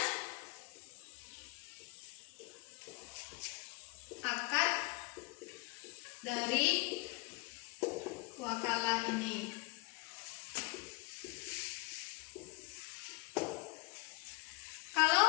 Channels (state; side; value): quieter; right; 27.8 dB